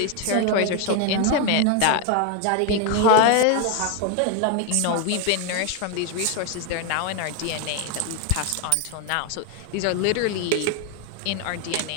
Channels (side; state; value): both; different; correlation 0.01